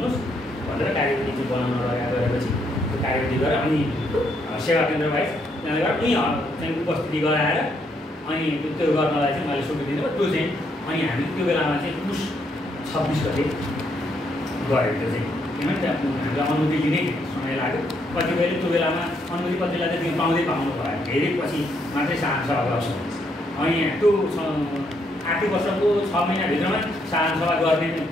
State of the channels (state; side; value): normal; both; correlation 0.74